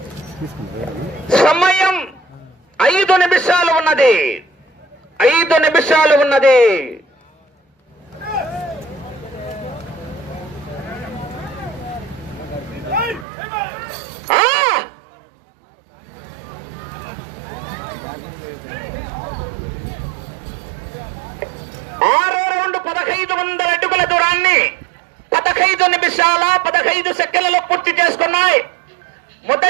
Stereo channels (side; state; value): left; drops out; at 13.2 s